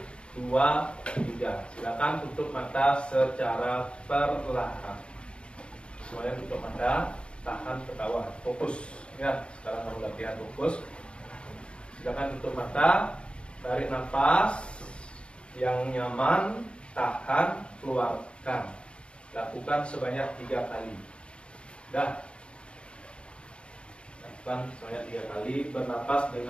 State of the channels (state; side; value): late; right; 0.057 ms